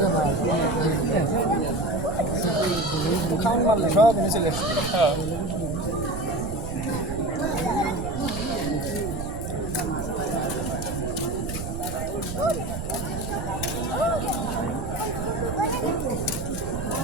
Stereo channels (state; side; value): noise; right; rumble, 7 dB below the sound